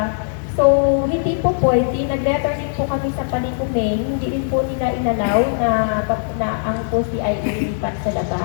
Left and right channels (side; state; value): right; silent; 61 dB below the other